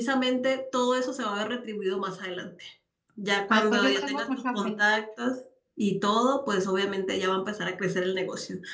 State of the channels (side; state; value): both; identical; correlation 1.00